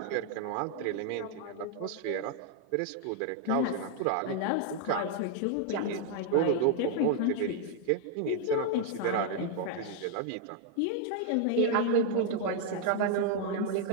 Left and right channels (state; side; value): different; both; correlation 0.00